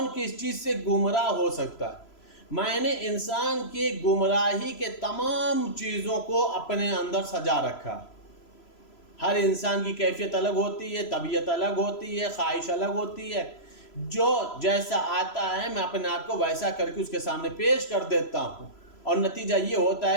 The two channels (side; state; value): right; late; 3.0 ms